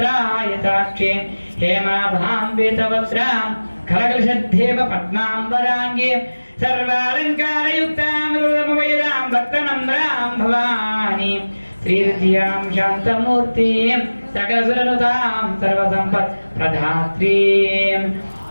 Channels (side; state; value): both; inverted; correlation -1.00